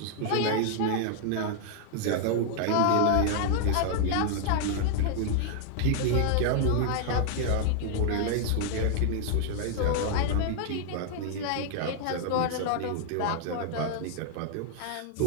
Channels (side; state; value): both; different; correlation 0.00